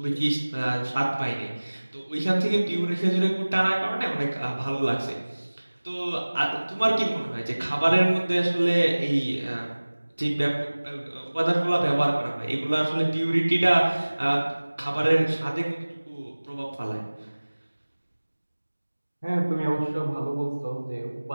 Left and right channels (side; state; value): both; inverted; correlation -1.00